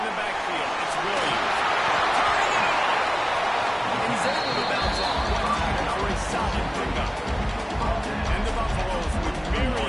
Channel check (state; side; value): identical; both; correlation 1.00